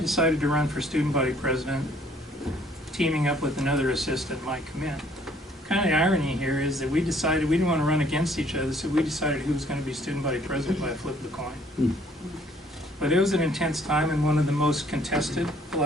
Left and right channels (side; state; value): both; normal; correlation 0.61